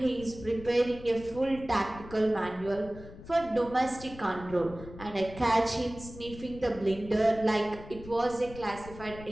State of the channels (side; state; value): left; noise; rumble, 15 dB below the sound